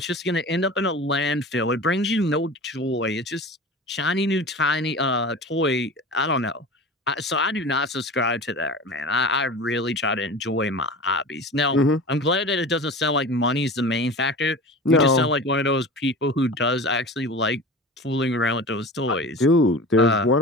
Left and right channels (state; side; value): normal; both; correlation 0.34